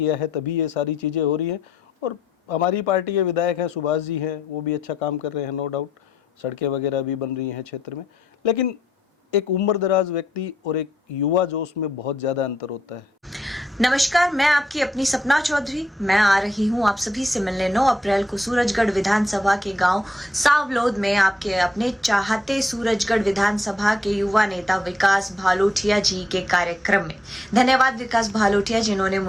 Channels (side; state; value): both; normal; correlation 0.76